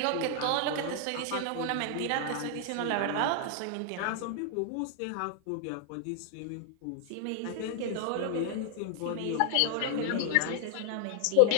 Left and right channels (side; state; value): both; different; correlation 0.00